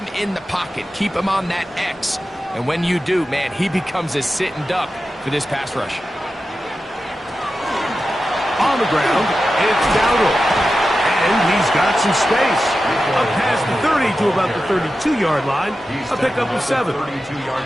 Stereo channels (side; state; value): both; normal; correlation 0.92